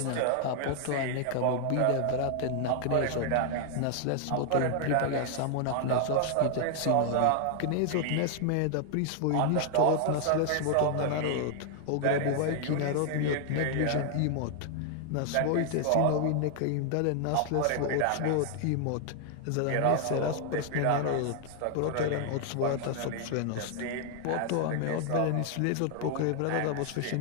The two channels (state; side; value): different; both; correlation 0.00